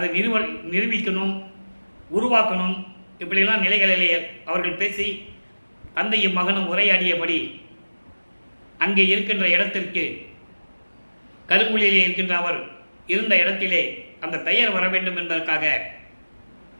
நிரூபிக்கணும், உருவாக்கணும், இப்படியெல்லாம் நிலைகளிலே அவர்கள் பேசி தந்தையும் மகனும் உரையாடியபடி அங்கே இருக்கின்ற இடத்திற்கு கருங்குழியிலே இருக்கின்ற அவர் இருந்த இடத்திலே அந்த பெயர் வர வேண்டும் என்பதற்காக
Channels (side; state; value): both; inverted; correlation -1.00